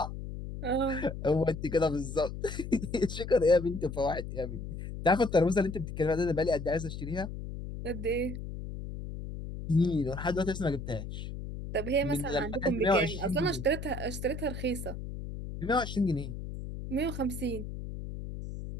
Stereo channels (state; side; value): noise; left; hum, 8 dB below the sound